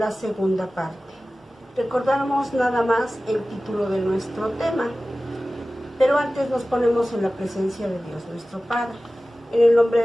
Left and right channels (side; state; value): both; normal; correlation 0.96